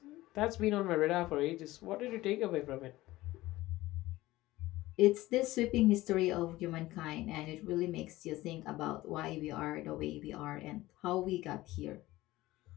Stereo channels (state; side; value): quieter; right; 17.7 dB